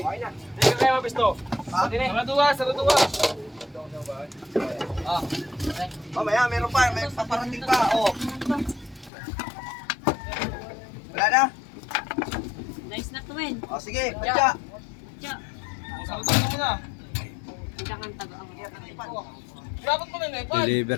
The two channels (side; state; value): right; drops out; at 9.1 s